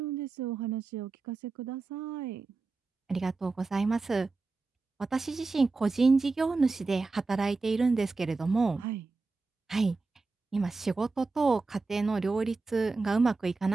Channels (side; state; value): left; quieter; 3.8 dB